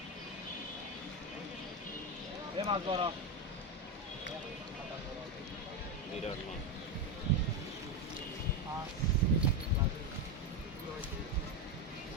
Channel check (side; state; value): both; normal; correlation 0.11